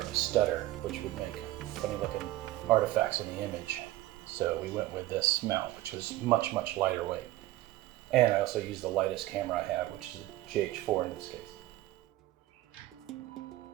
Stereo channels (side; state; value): left; quieter; 16.6 dB